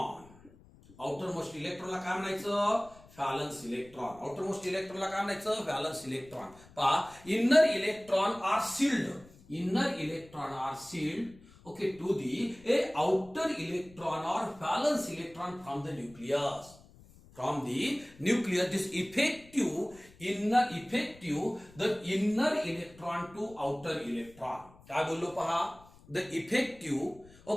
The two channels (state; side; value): noise; left; rumble, 24 dB below the sound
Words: Outermost इलेक्ट्रॉनला काय म्हणायचं? Valence electron. आउटर मोस्ट इलेक्ट्रॉनला काय म्हणायचं? Valence electron. पहा, inner electron are shield. Inner electron are shield, okay, to the outer electron or valence electron from the nucleus. From the nucleus, this the inner electron to outer electron. काय बोललो पहा? The effective,